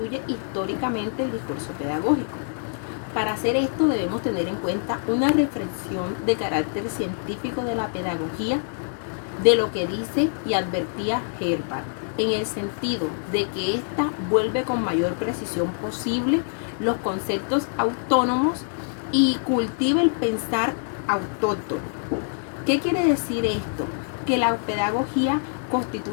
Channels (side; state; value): right; silent; 62 dB below the other